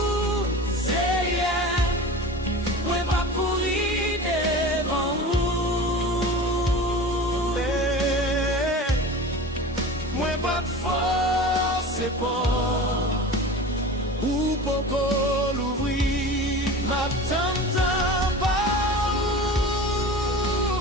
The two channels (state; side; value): normal; both; correlation 0.34